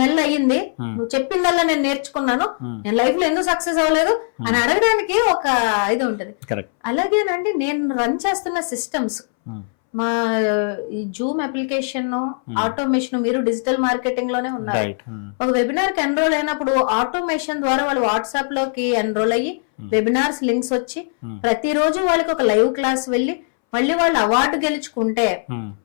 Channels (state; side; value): silent; right; 64 dB below the other